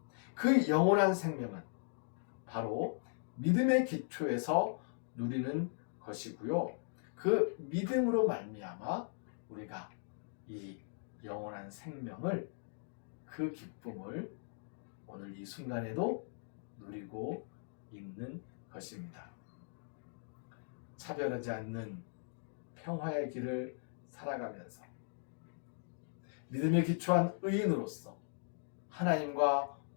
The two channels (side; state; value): right; silent; digital silence